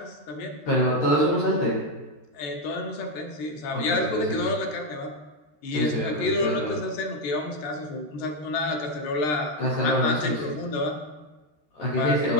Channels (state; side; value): late; right; 13 ms